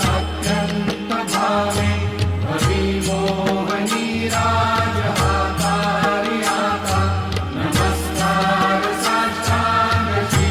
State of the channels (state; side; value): identical; both; correlation 1.00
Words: भावे, भवी मोहनी राज हातारी आता, नमस्कार साष्टांग श्री